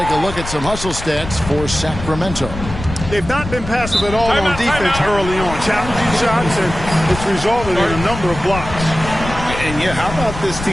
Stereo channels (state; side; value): noise; left; rumble, 9 dB below the sound